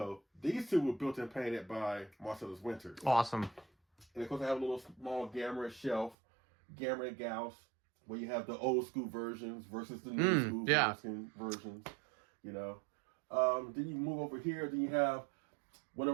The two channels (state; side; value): drops out; left; at 6.2 s